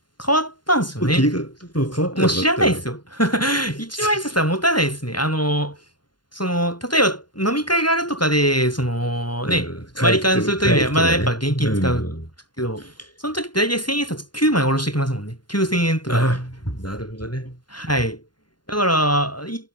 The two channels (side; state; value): right; late; 0.71 ms